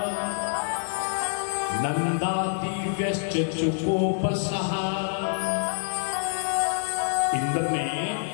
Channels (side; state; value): right; silent; digital silence